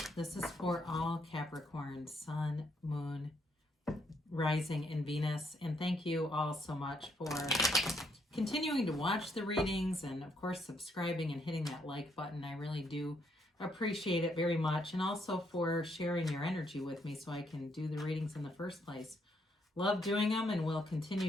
This is for all Capricorn, Sun, Moon, Rising, and Venus. And thank you all so much for continuing to watch the readings and of course subscribing and hitting that like button. I really do appreciate it very much, and also for sharing your energy with me so I can do the readings in the first place. Love doing them and will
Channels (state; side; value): normal; both; correlation 0.73